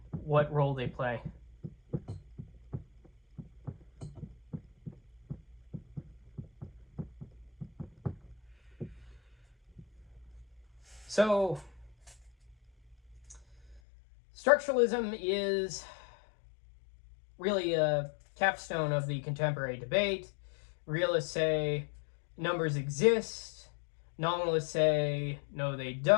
what role they play. So, structuralism is really a capstone of the contemporary debate. Realists say numbers exist. Nominalists say no, they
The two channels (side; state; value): right; drops out; at 13.8 s